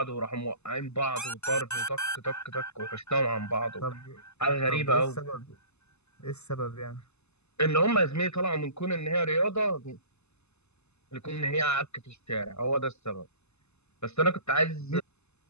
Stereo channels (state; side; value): late; right; 0.80 ms